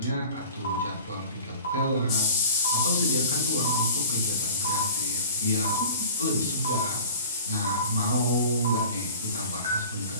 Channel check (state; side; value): inverted; both; correlation -0.40